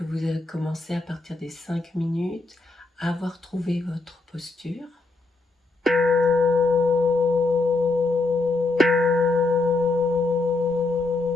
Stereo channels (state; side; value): quieter; right; 3.3 dB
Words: vous avez commencé à partir des 5 minutes, avoir trouvé votre posture.